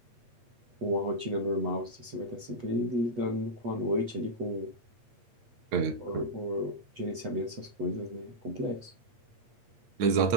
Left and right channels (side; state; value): left; late; 8.5 ms